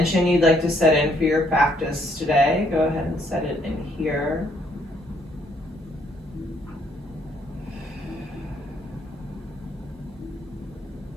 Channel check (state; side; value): normal; both; correlation 0.68